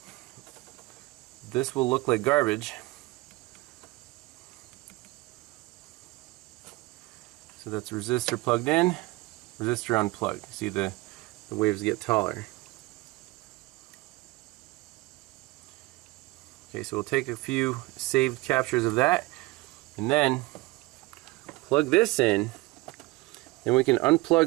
This will look like garbage. So that's resistor plugged in, resistor unplugged. See the waves get taller. Okay, so we'll take a few saved captures of that and then plug this in. Then we can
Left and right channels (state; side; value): quieter; left; 21.5 dB